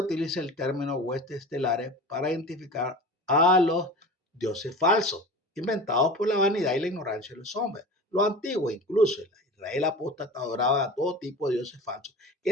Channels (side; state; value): both; normal; correlation 0.34